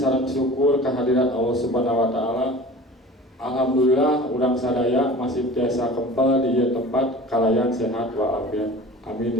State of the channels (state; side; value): normal; both; correlation 0.40